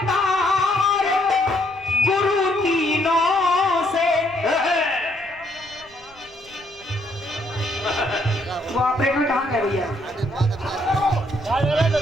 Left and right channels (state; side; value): noise; left; rumble, 28 dB below the sound